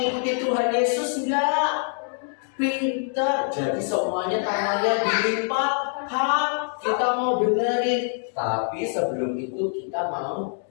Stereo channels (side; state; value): right; silent; 62 dB below the other